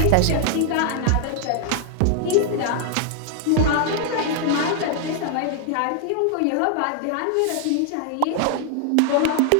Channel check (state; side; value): different; both; correlation 0.00